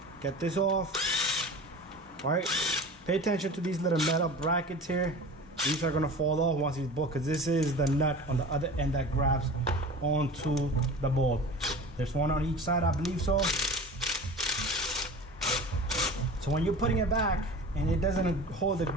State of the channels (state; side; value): normal; both; correlation 0.37